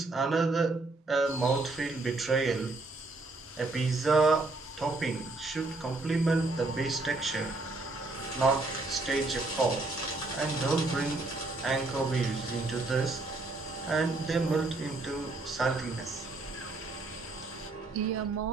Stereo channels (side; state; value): left; quieter; 3.2 dB